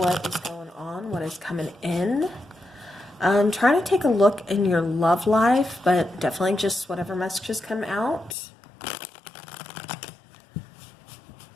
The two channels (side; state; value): right; drops out; at 8.3 s